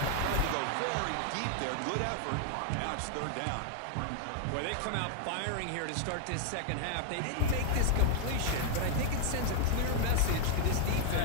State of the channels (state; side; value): different; both; correlation 0.00